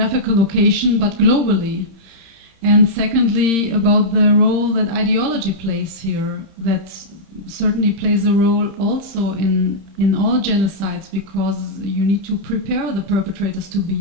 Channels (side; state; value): left; late; 30 ms